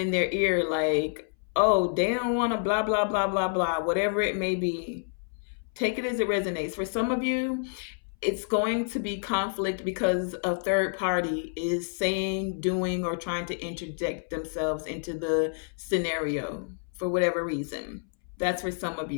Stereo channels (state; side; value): silent; right; 59 dB below the other